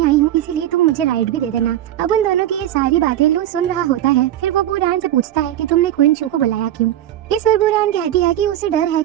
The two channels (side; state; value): left; quieter; 12.4 dB